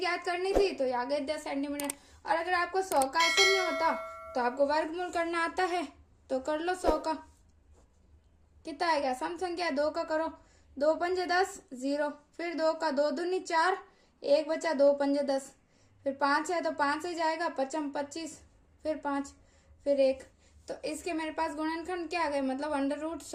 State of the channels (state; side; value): identical; both; correlation 1.00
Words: करनी थी तो आ गए 10 सेंटीमीटर। और अगर आपको 100 का ऐसे नहीं होता तो आपको वर्गमूल करना आता है, तो कर लो 100 का। कितना आएगा, सम संख्या 2 का करो, 2 पंजे 10 0, फिर 2 का 2 दूनी 4, 1 बचा, 2 पंजे 10, फिर 5 है तो 5 से जाएगा, 5 25, फिर 5, फिर 1। तो इसके मेरे पास गुणनखंड क्या आ गए, मतलब अंडर रूट